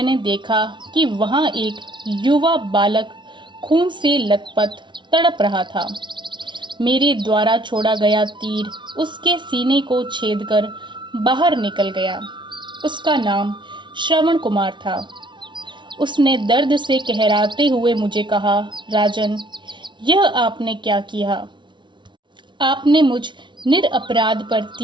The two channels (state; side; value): late; left; 0.23 ms